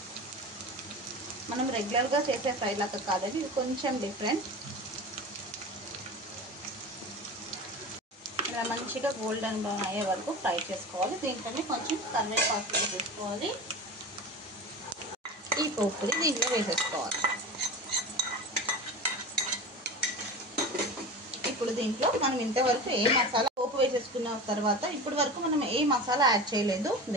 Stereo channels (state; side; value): normal; both; correlation 0.31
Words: మనం రెగ్యులర్గా చేసే ఫ్రై లాగా కాదండి, ఇది కొంచెం డిఫరెంట్. ఇలా మంచిగా గోల్డెన్ బ్రౌన్ అయ్యే వరకు ఫ్రై చేసుకోవాలి. దీంట్లోనే కొంచెం కరివేపాకు వేసుకోవాలి. ఈ పోపుని దీంట్లో వేసేసుకోవాలి. ఇప్పుడు దీంట్లో మనం ఇంతవరకు ఏ మసాలా పోపు వేసేసుకున్న తర్వాత ఇప్పటి వరకు మనం ఏ మసాలా యాడ్ చేయలేదు.